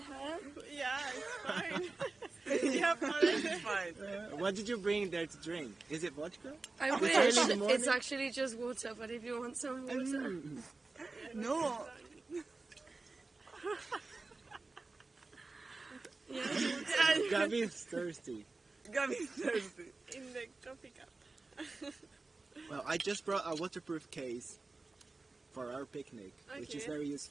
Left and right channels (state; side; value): quieter; left; 3.6 dB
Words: Yeah, it's fine. Yep, it's fine. What did you bring there to drink? Is it vodka? I It's wish. early in the morning. It's actually just water, but if you want some water. No. Yeah. Gabby is thirsty. Gabby's thirsty. In the coffee cup. Well, I just brought a waterproof case for our picnic, which is Okay. very